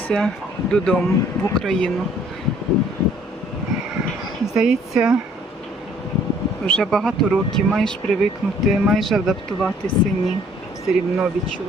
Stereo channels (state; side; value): normal; both; correlation 0.59